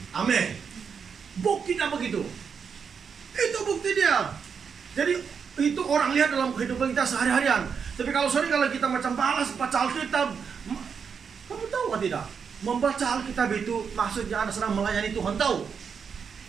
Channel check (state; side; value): quieter; left; 6.4 dB